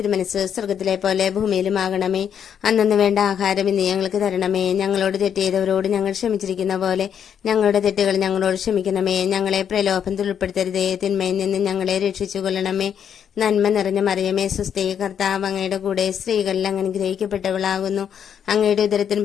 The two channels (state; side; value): quieter; right; 8.4 dB